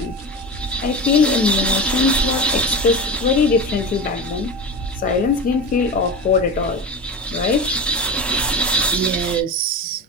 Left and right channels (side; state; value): both; normal; correlation 0.27